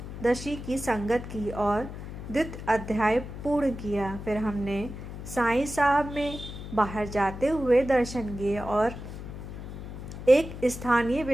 की संगत की और द्वितीय अध्याय पूर्ण किया। फिर हमने साईं साहब में बाहर जाते हुए दर्शन किए और एक स्थानीय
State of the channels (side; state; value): left; noise; hum, 10 dB below the sound